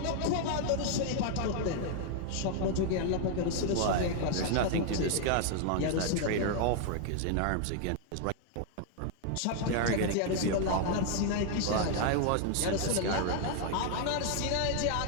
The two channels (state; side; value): different; both; correlation 0.00